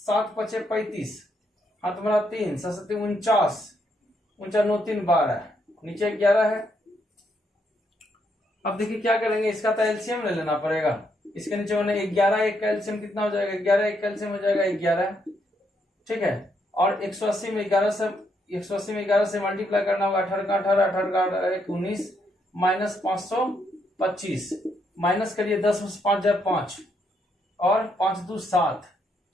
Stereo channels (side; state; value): both; normal; correlation 0.76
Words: 7 5 35 हाँ तुम्हारा 3 7 49 49 9 3 12 नीचे 11 है। अब देखिए क्या करेंगे इसका तो एलसीएम ले लेना पड़ेगा। इसके नीचे मैंने 11 एक का एलसीएम कितना हो जाएगा 11 एक का एलसीएम हो जाएगा 11, ठीक है। और 180 में 11 से मल्टीप्लाई करना होगा 18 का 18 18 का 19 माइनस 525 माइनस करिए 10 5 जाए 5 और 5 2 7,